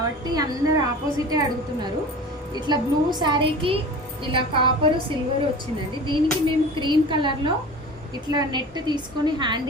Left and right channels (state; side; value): normal; both; correlation 0.37